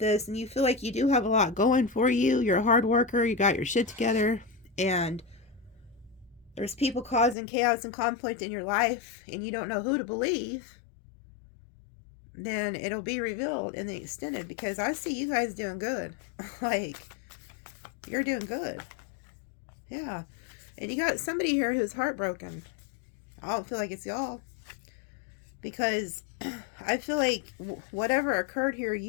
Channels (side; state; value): right; drops out; at 7.4 s